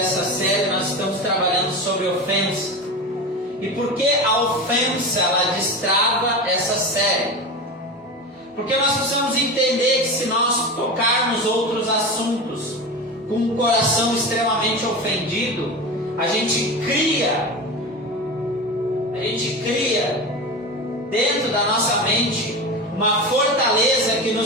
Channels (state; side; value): normal; both; correlation 0.26